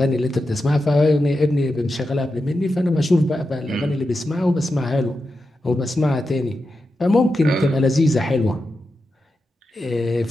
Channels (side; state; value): both; normal; correlation 0.89